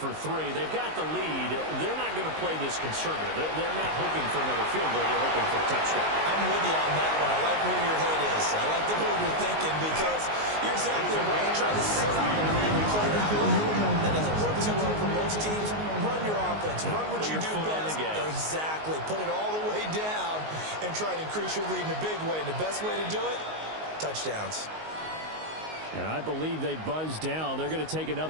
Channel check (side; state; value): left; late; 19 ms